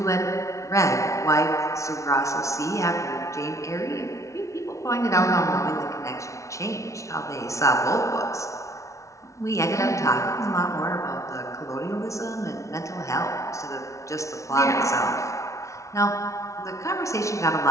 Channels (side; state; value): right; late; 0.14 ms